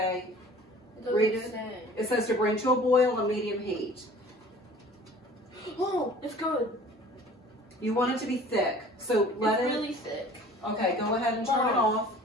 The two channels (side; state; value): both; normal; correlation 0.47